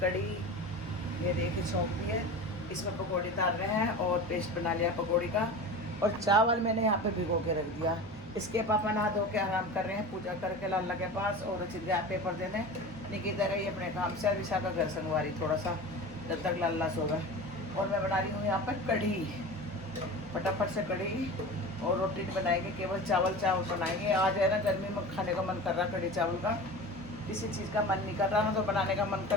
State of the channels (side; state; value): both; normal; correlation 0.32